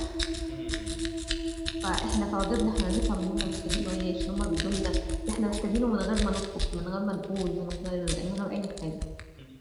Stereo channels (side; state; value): both; identical; correlation 1.00